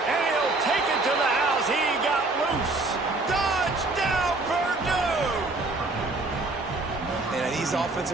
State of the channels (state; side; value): quieter; left; 3.2 dB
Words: And he'll take it to the house. He got loose. Touchdown, Purdue! And these